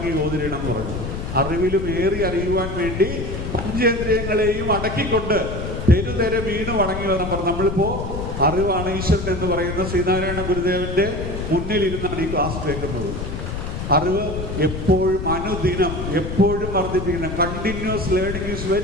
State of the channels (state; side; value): noise; left; rumble, 5 dB below the sound